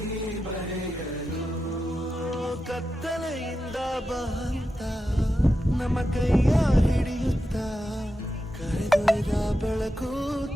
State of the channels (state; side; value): normal; both; correlation 0.90